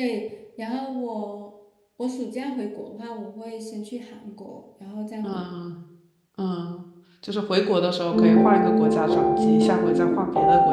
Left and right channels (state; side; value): identical; both; correlation 1.00